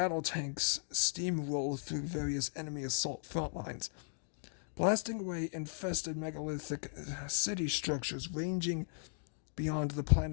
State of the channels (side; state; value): right; silent; digital silence